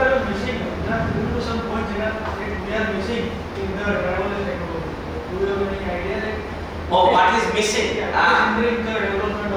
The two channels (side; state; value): both; identical; correlation 1.00